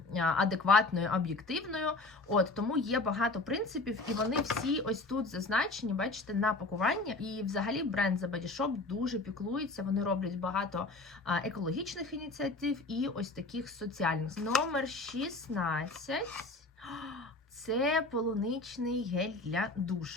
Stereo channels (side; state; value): right; quieter; 3.2 dB